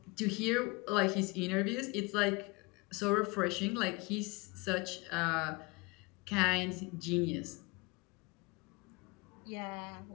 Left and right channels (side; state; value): right; quieter; 26.0 dB